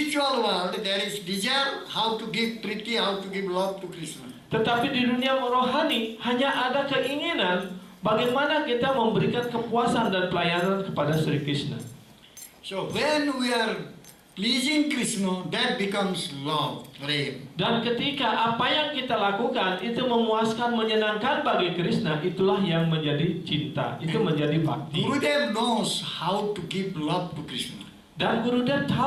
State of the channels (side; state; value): both; identical; correlation 1.00